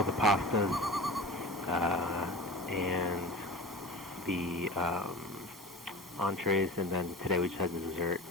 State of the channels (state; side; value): normal; both; correlation 0.33